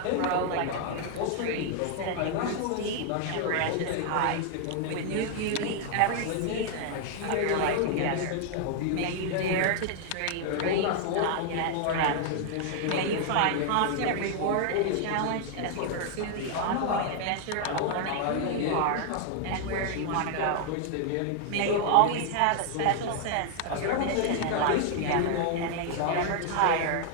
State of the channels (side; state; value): both; different; correlation 0.00